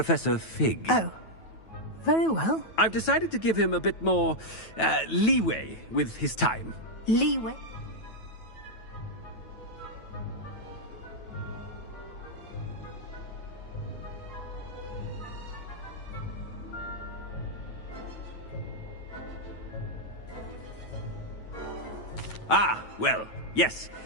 Fig. Oh, very well. I've decided to give him a bit more, leeway with his time. Leeway? Ah, well, yes.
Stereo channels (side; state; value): right; late; 9.2 ms